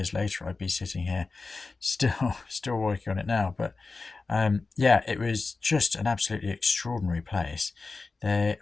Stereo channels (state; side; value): quieter; right; 4.0 dB